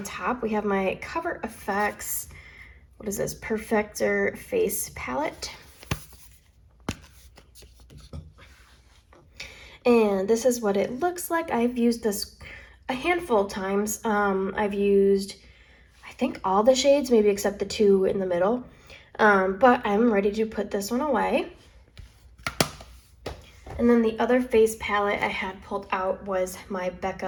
top, we have my Cover FX, what is this, Perfector Face Palette. And this is what it looks like. I've used this a handful of times. I've used, I think, all the shades, maybe except the two in the middle. But I'm ready to put this one away. And then the other face palette I had pulled out was my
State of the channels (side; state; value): both; identical; correlation 1.00